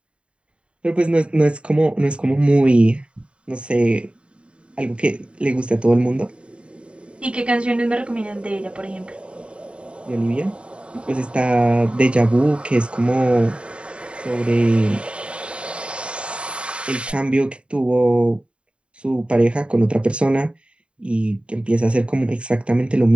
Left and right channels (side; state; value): left; late; 0.057 ms